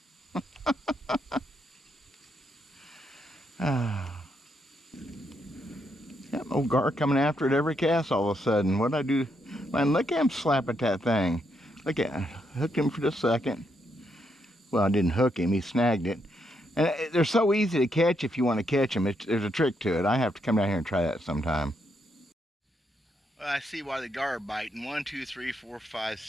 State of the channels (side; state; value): both; normal; correlation 0.78